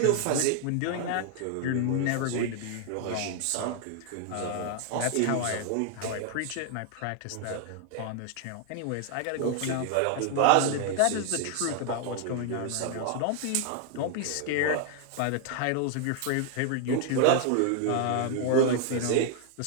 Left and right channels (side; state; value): both; different; correlation 0.00